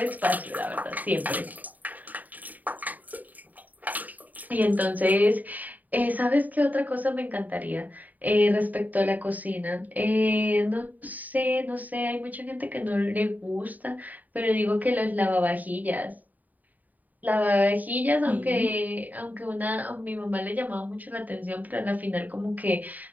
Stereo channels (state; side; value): late; left; 0.080 ms